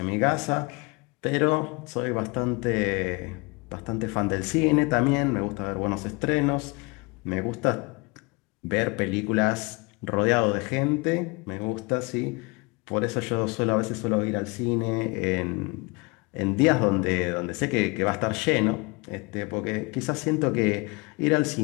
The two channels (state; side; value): quieter; right; 27.8 dB